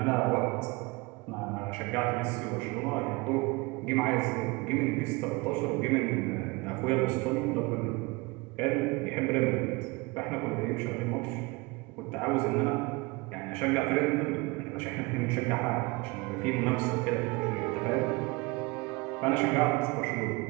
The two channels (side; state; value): left; quieter; 25.2 dB